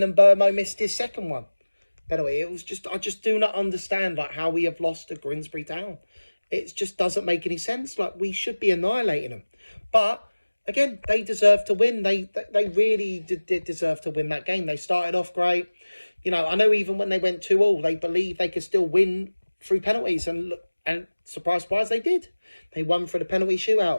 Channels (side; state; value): both; inverted; correlation -1.00